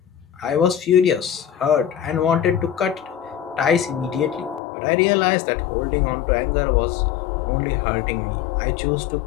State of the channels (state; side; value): drops out; right; at 4.6 s